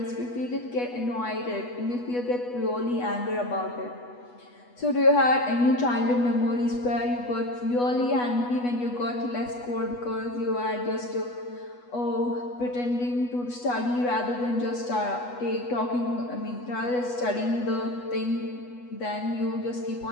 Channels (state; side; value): late; right; 8.2 ms